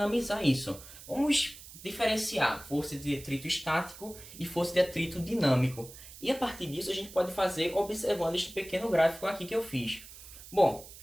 isso. Vamos diferenciar força de atrito estático e força de atrito dinâmico. E a partir disso a gente pode fazer observando este pequeno gráfico aqui que eu fiz. Bom,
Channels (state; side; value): noise; right; hiss, 16 dB below the sound